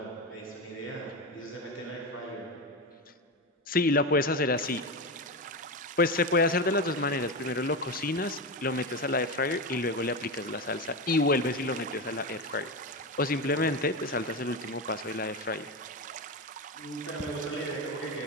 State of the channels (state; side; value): normal; both; correlation 0.17